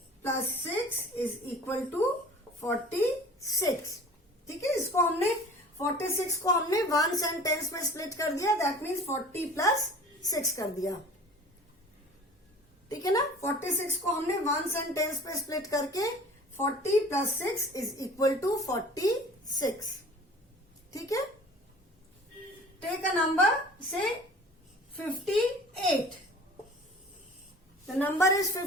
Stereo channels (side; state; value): both; normal; correlation 0.44